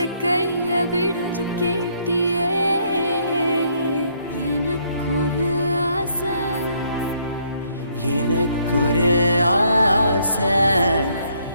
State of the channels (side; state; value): both; inverted; correlation -0.69